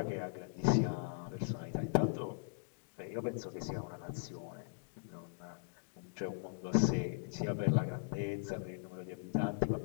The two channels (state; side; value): silent; right; digital silence